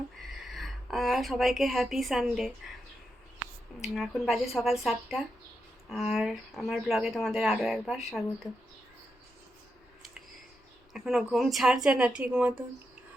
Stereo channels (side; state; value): both; normal; correlation 0.85